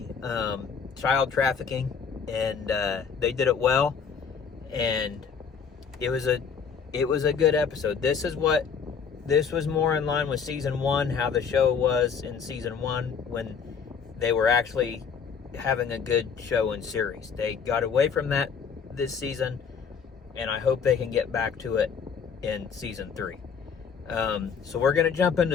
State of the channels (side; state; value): right; quieter; 6.3 dB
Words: child trafficking, and they did it well, and it was a good episode. This was more in line with season 1, how the show was in season 1 when they were actually having a good show and series. They got away from that this season, and I hope they can get back to it in season 3. So we're going to jump